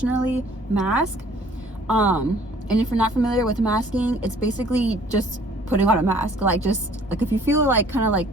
mask. And if you're not familiar with masking, it's basically just putting on a mask. Like if you feel like kind of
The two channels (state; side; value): normal; both; correlation 0.55